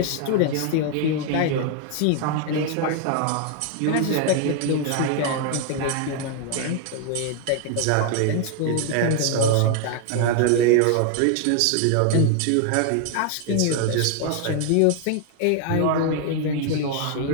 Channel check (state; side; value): different; both; correlation 0.00